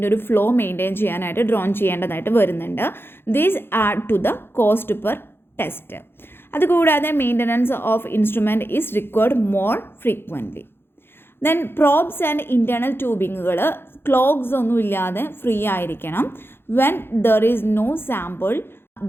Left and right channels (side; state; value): right; late; 0.11 ms